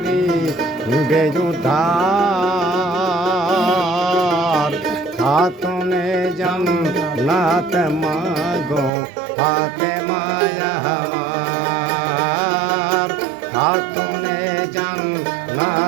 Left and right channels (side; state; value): left; drops out; at 8.9 s